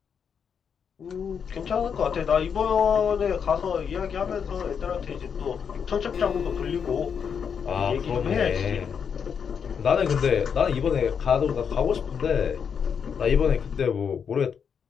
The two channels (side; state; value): right; quieter; 7.0 dB